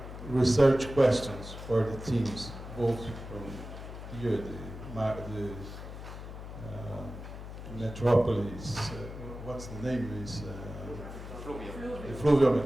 research questions for the teams, both from here, the metropolis, what's the name is? The Fluvial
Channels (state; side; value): noise; left; hum, 11 dB below the sound